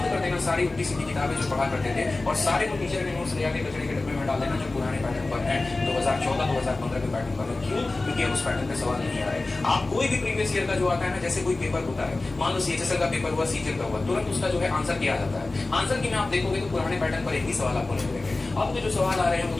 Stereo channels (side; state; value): right; quieter; 3.2 dB